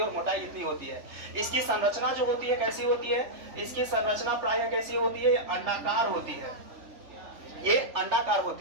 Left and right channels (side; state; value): left; late; 3.4 ms